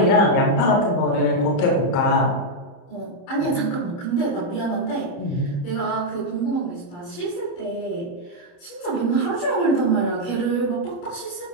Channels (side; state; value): right; late; 29 ms